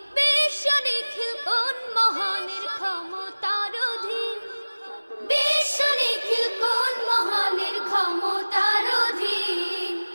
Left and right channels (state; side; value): inverted; both; correlation -1.00